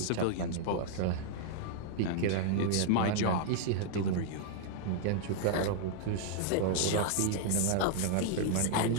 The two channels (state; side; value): different; both; correlation -0.01